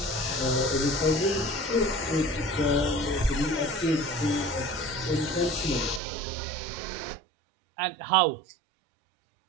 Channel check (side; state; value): left; drops out; at 6.0 s